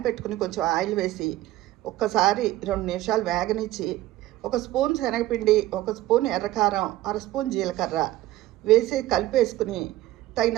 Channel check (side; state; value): left; quieter; 15.8 dB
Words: పెట్టుకుని కొంచెం ఆయిల్ వేసి ఒక్కసారి 2 నిమిషాలు వేగనిచ్చి ఒక స్పూన్ శనగపిండి, ఒక స్పూన్ ఎర్రకారం, అర స్పూన్ జీలకర్ర వేసి కలిపేసుకుని